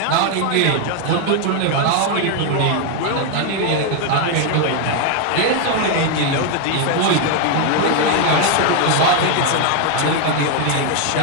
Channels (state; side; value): different; both; correlation 0.01